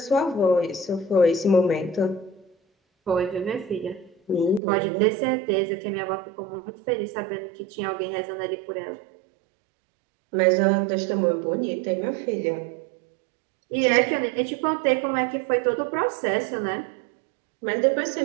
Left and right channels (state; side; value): drops out; left; at 4.6 s